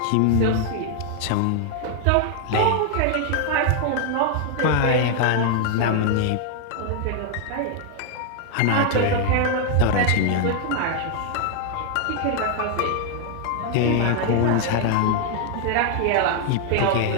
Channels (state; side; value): different; both; correlation 0.00